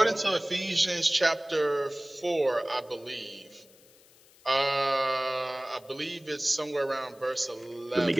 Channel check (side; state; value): left; noise; hiss, 27 dB below the sound